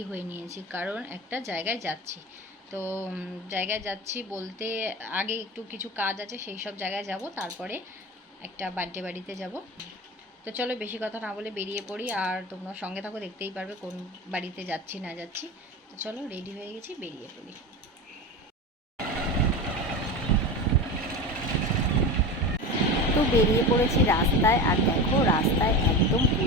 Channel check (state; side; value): normal; both; correlation 0.27